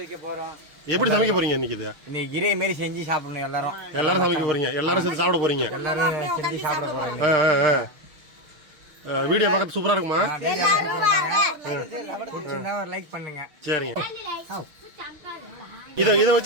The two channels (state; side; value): late; left; 6.4 ms